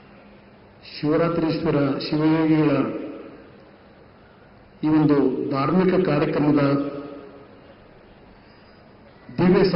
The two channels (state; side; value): identical; both; correlation 1.00